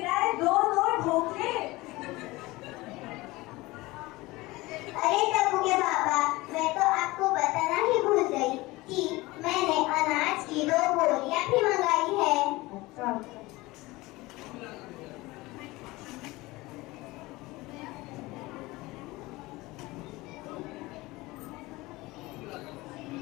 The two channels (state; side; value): quieter; right; 20.8 dB